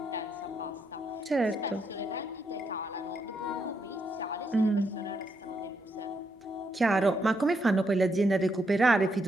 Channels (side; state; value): both; normal; correlation 0.78